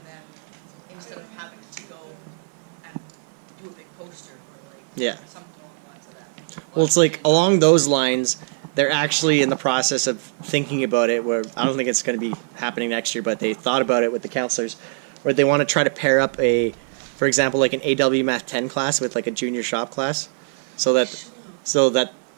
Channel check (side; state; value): left; silent; 55 dB below the other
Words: then instead of having to go and do a big poster or like Yeah. something along the lines of that. Well, it's like along those lines, they're actually in the process of thinking about it. Where I don't think it's going to be happening next year, but they thought about it with the counselors, where they want to try to pair up for example, like an AW Math 10 class with like a junior shop class, so that